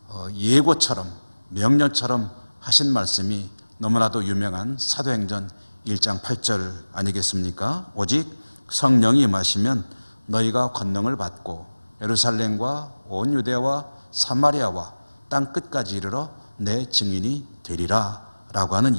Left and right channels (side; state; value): both; inverted; correlation -1.00